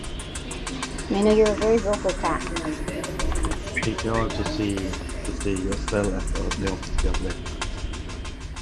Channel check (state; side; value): identical; both; correlation 1.00